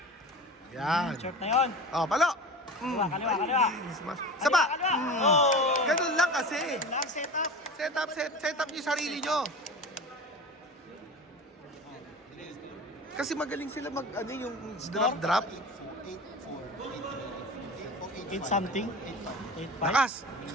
Yan. Short na yun. Palo. Kaliwa. Smash. Saba. Kaliwa. Oh. Ganun lang kasi. Lang set up. Set up yung sarili nyo. Kasi magaling sila yung drop. 8 something. 8-5. Lakas.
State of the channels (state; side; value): normal; both; correlation 0.33